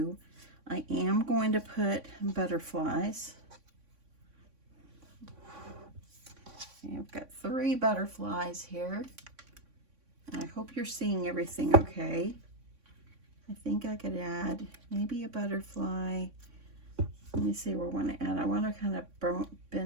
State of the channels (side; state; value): left; late; 3.6 ms